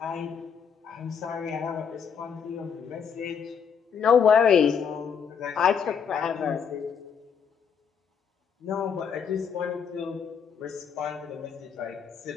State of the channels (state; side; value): quieter; right; 6.9 dB